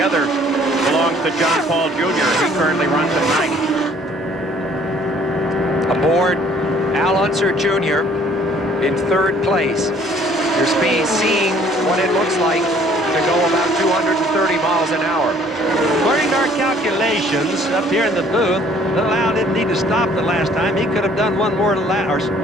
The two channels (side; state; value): both; normal; correlation 0.58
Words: other belongs to John Paul Jr. He currently runs at 9th. Aboard Al Unser Jr. in 3rd place. You're seeing what it looks like to go about 230 miles an hour. According to our calculations up here in the booth, Little Al didn't need to stop the last time. He could have done one